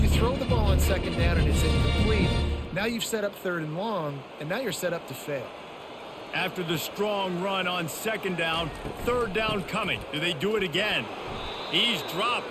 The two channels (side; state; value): both; identical; correlation 1.00